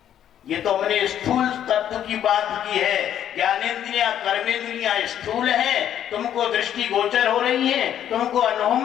ये तो हमने स्थूल तत्व की बात की है। ज्ञानेंद्रियां कर्मेंद्रियां स्थूल हैं, तुमको दृष्टि गोचर हो रही हैं, तुमको अनुभव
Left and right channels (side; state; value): right; quieter; 10.3 dB